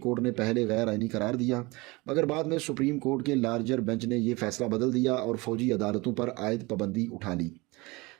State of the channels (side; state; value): left; quieter; 23.8 dB